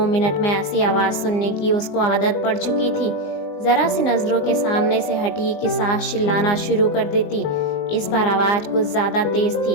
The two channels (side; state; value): right; late; 19 ms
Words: मिनट में ऐसी आवाज सुनने की उसको आदत पड़ चुकी थी। जरा सी नजरों के सामने से हटी कि सास चिल्लाना शुरू कर देती। इस बार आवाज कुछ ज्यादा तेज